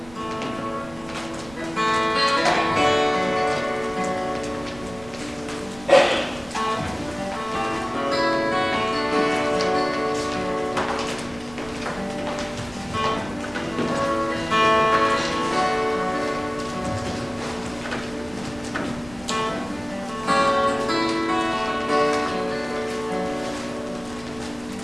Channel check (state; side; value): noise; right; rumble, 20 dB below the sound